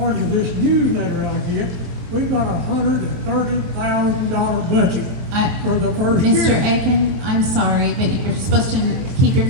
to this newsletter out here, we've got $130,000 budget for the first year. Mr. Aiken, I'm sorry, but you're supposed to keep your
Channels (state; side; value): late; left; 22 ms